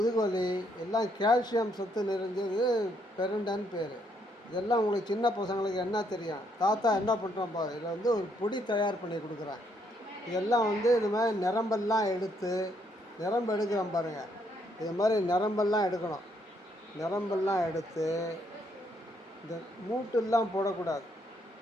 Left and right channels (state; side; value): normal; both; correlation 0.72